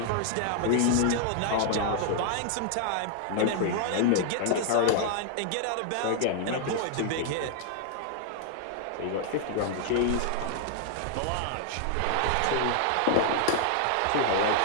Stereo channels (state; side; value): different; both; correlation 0.00